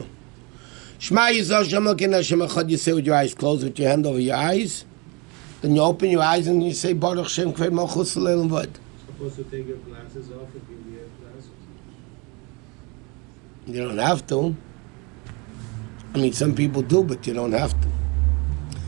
Shema Yisrael Hashem Elokeinu Hashem Echad, you say with your eyes closed, with your hand over your eyes. Then you open your eyes and you say Baruch Shem Kved Malchus Leil V'Ed. Supposed to take your glasses off if you wear glasses? You don't have to. I mean, some people do, but you don't have to.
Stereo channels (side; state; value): left; quieter; 28.8 dB